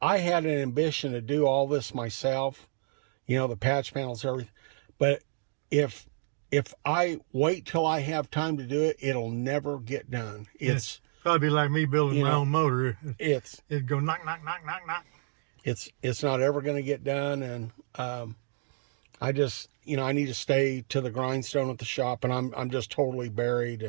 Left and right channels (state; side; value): silent; left; digital silence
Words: I had an ambition to do all this myself, you know, the patch panels, everything. But if I wait till I have time to do it, it'll never get done. It's probably like me building my own motor. It'd go knock, knock, knock, knock, knock. It's not ever going to get done. And I just, you know, I need to stay to the grindstone at the shop, and I'm just totally buried.